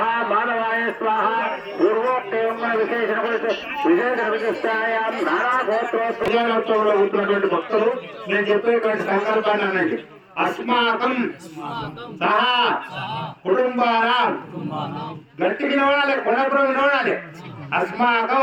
माधवाय स्वाहा పూర్వోక్తేమ విశేషణ విశిష్టాయాం నారాగోత్రోత్సవంలో ఉంటున్నటువంటి భక్తులు నేను చెప్పేటువంటి సంకల్పాన్ని అనండి. అస్మాకం సహా కుటుంబానాం గట్టిగా వినవాలి, కొనప్పుడు వినవాలి.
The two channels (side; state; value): both; identical; correlation 1.00